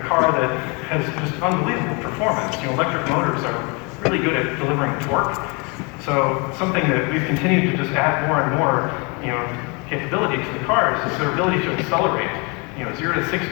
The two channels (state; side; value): quieter; right; 31.0 dB